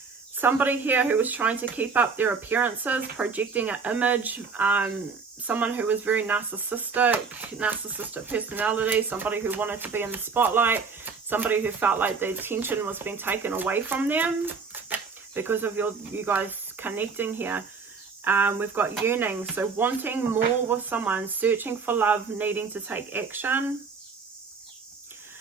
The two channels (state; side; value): quieter; left; 5.1 dB